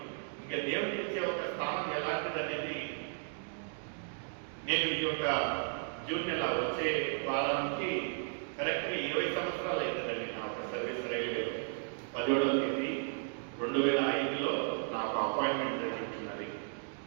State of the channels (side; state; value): left; silent; 55 dB below the other